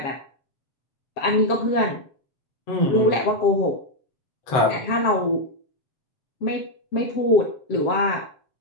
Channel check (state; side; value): late; right; 7.5 ms